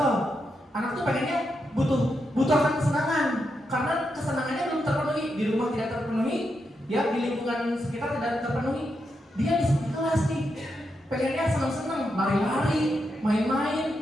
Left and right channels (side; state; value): both; normal; correlation 0.84